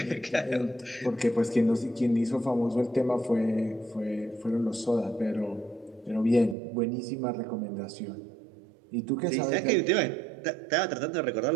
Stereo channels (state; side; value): drops out; left; at 6.6 s